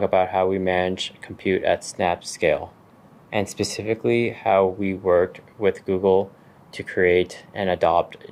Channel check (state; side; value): identical; both; correlation 1.00